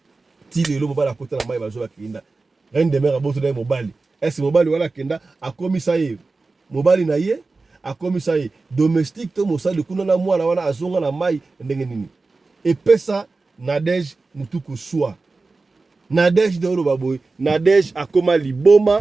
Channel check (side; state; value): left; quieter; 3.7 dB